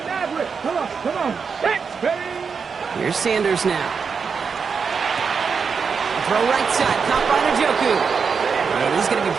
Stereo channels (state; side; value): quieter; left; 5.8 dB